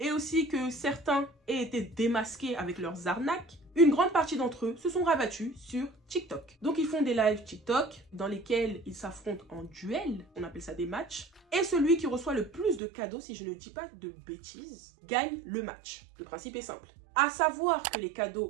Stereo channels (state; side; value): drops out; left; at 12.8 s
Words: aussi que certains aient été démasqués avec leurs arnaques, une grande partie d'entre eux se sont rabattus sur TikTok. Donc ils font des lives TikTok dans lesquels ils s'affrontent en duel, on appelle ça des matchs, et celui qui reçoit le plus de cadeaux, si je ne dis pas de bêtises, gagne le match. Le principe est simple. À savoir que les